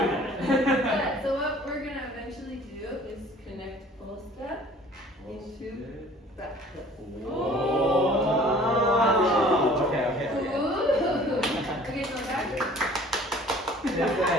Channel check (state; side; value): normal; both; correlation 0.51